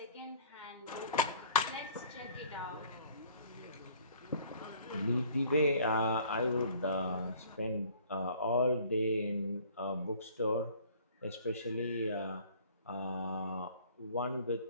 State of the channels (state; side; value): inverted; both; correlation -0.53